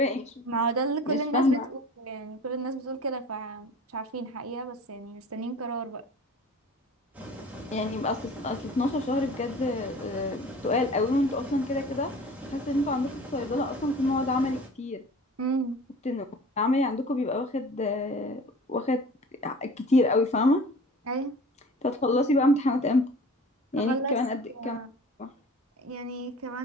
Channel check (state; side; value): normal; both; correlation 0.42